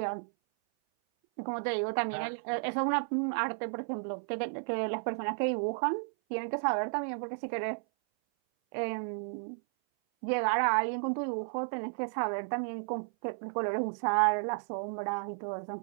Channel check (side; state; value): left; silent; 56 dB below the other